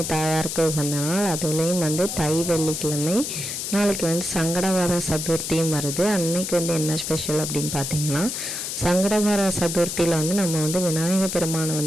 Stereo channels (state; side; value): noise; left; hiss, 4 dB below the sound